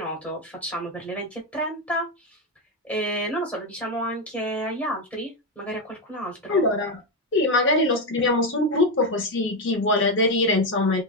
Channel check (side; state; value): both; normal; correlation 0.09